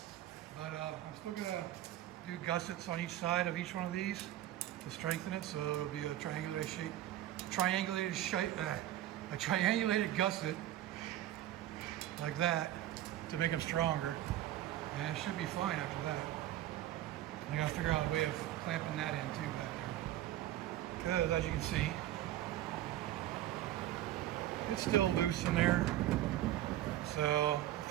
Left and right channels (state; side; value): quieter; left; 13.7 dB